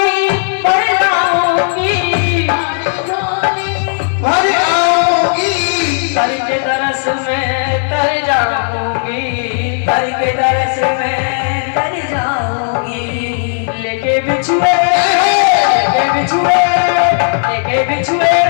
भर लाऊंगी, भर आऊंगी। कर के दरस में तर जाऊंगी, कर के दरस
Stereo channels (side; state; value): right; silent; digital silence